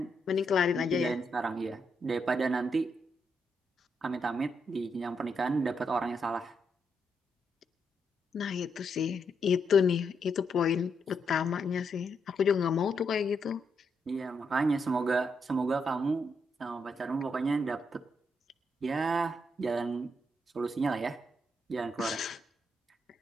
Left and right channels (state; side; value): normal; both; correlation 0.79